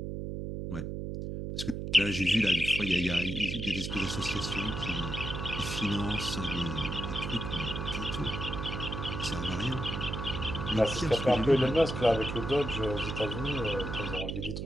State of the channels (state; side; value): noise; right; hum, 4 dB below the sound